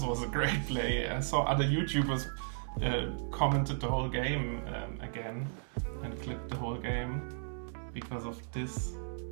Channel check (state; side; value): silent; left; digital silence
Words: was a great play. I saw other YouTubers commented the whole game again and clipped the whole game because of this